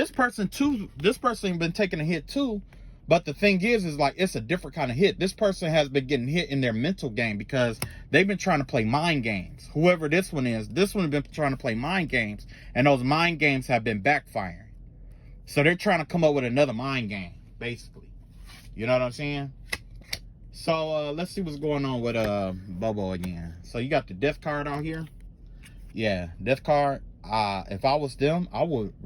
person been taking a hit too. But the thing is like, it's a different kind of hit. This person has been getting hit in their mental game because they've been trying to play mind games. Whoever this one is, this one has been trying to play mind games, and those mind games have been backfiring. So they're trying to come up with another mind game, basically. You know what I'm saying? So let's see what's going on with Bobo again. So you got the Death card out here. Yeah, Death card. If I was them, I would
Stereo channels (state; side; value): identical; both; correlation 1.00